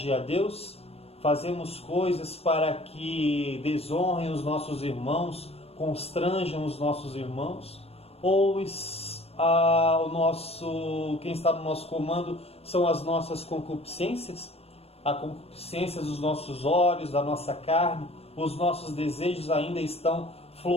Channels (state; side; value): late; right; 0.29 ms